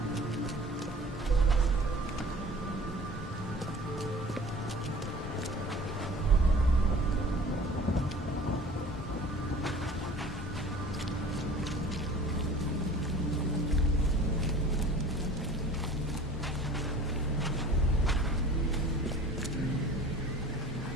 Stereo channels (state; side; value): normal; both; correlation 0.45